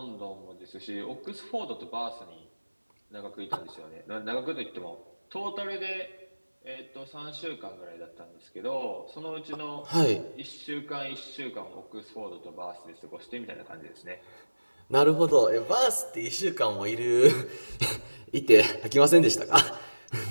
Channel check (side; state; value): both; inverted; correlation -1.00